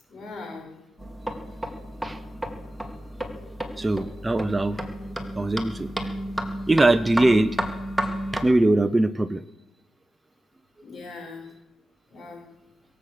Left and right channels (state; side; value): normal; both; correlation 0.96